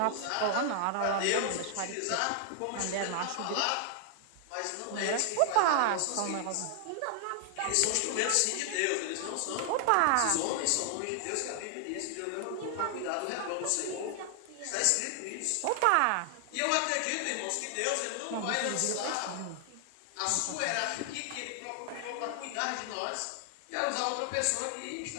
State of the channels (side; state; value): both; different; correlation 0.00